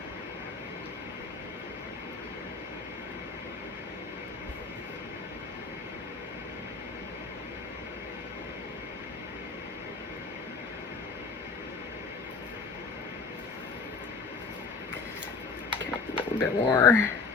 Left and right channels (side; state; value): right; quieter; 4.6 dB